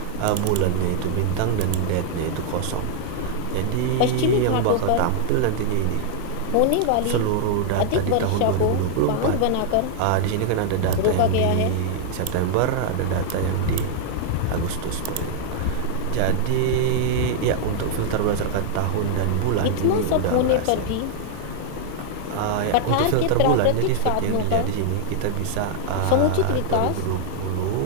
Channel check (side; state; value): both; different; correlation -0.01